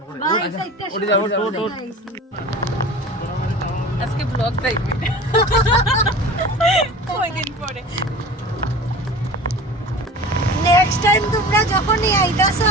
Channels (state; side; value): normal; both; correlation 0.37